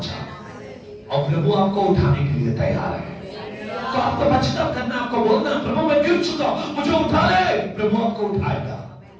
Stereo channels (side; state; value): both; identical; correlation 1.00